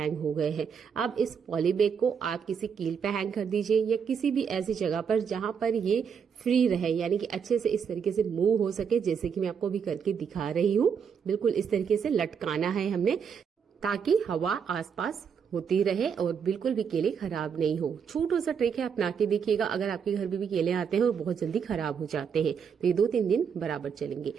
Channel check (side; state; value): left; quieter; 6.9 dB